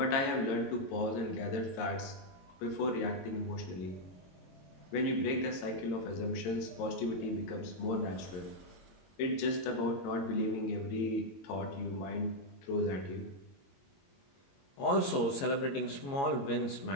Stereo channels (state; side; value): late; right; 22 ms